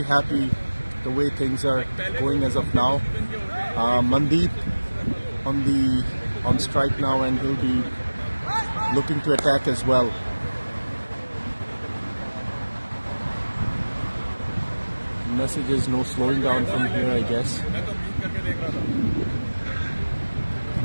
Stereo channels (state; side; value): inverted; both; correlation -1.00